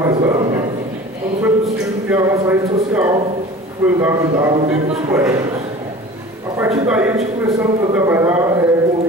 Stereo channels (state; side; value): normal; both; correlation 0.41